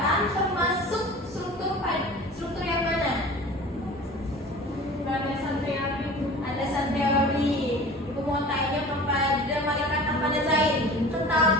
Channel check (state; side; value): normal; both; correlation 0.40